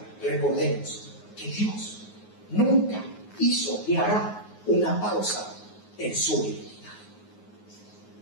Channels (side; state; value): right; late; 9.5 ms